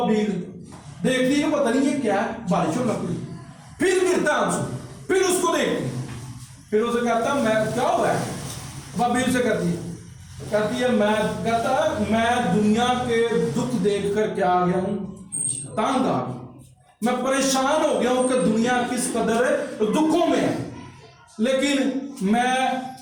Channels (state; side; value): identical; both; correlation 1.00